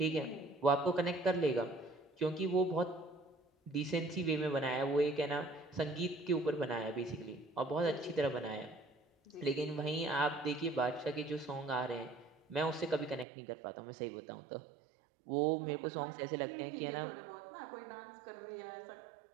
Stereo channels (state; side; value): drops out; left; at 13.2 s